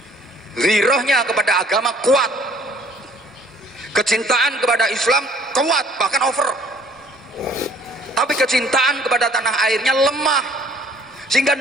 Ghirahnya kepada agama kuat, kecintaan kepada Islam kuat, bahkan over, tapi kecintaan kepada tanah airnya lemah, sehingga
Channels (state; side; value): normal; both; correlation 0.57